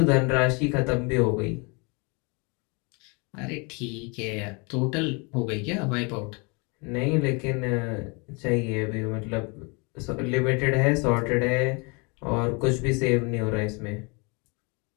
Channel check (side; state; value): right; quieter; 30.7 dB